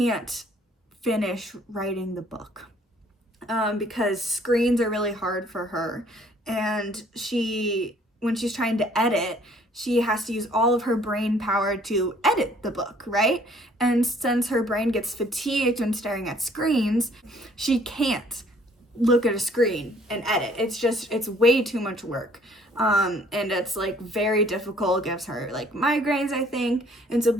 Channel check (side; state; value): both; normal; correlation 0.59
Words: finish writing the book because screens are really hard for her. And when she's trying to edit, she has to use all of her brain power to edit the book, right? And since her brain gets fatigued when staring at screens, she can't look at a screen and edit. It's way too much work. And it's like very difficult, gives her like migraines, I think. And so